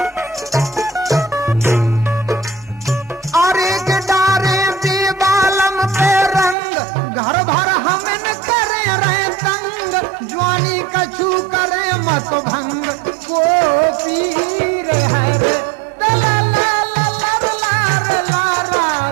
अरे के डारे बेबालम पे रंग घर भर हमन करे रहे तंग ज्वानी कछु करे मत भंग को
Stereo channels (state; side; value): drops out; left; at 6.6 s